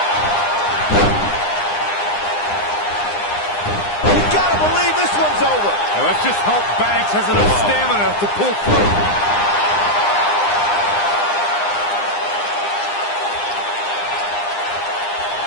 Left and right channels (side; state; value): right; late; 9.8 ms